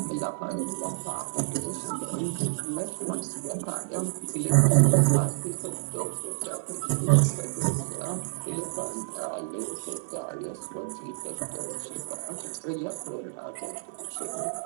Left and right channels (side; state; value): left; silent; 59 dB below the other